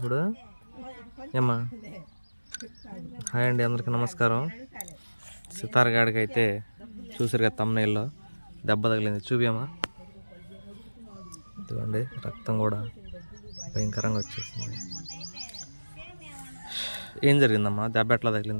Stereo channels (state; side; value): inverted; both; correlation -1.00